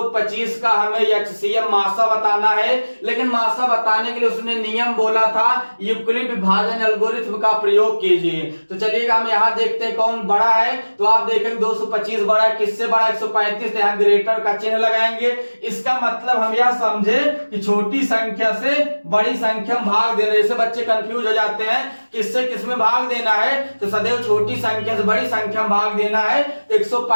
का हमें एचसीएफ मासा बताना है, लेकिन मासा बताने के लिए उसने नियम बोला था यूक्लिड विभाजन एल्गोरिथम का प्रयोग कीजिए। तो चलिएगा हम यहाँ देखते हैं कौन बड़ा है, तो आप देखेंगे 225 बड़ा है, किससे बड़ा 135, तो यहाँ ग्रेटर का चिन्ह लगाएंगे। इसका मतलब हम यह समझे कि छोटी संख्या से बड़ी संख्या में भाग देना, जैसे बच्चे कंफ्यूज हो जाते हैं किससे किसमें भाग देना है, तो सदैव छोटी संख्या से बड़ी संख्या में भाग देना है।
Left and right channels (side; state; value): both; inverted; correlation -1.00